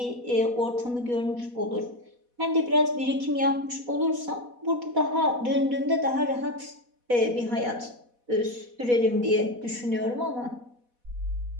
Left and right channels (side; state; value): left; late; 4.1 ms